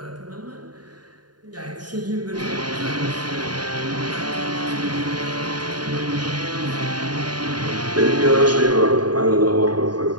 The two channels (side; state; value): left; late; 0.70 ms